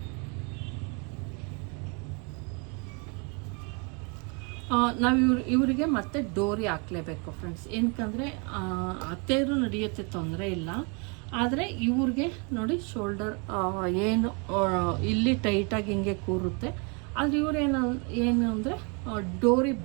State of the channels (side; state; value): left; quieter; 34.2 dB